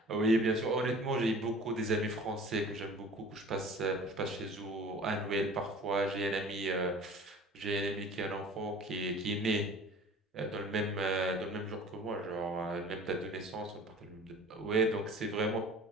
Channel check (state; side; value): normal; both; correlation 0.45